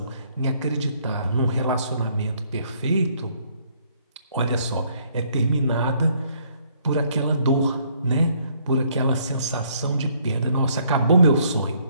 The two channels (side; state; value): both; inverted; correlation -0.66